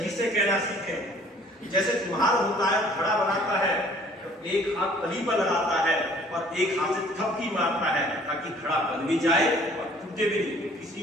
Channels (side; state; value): both; normal; correlation 0.55